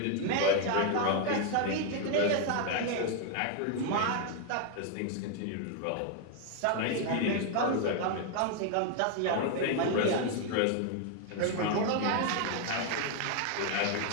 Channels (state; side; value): different; both; correlation 0.00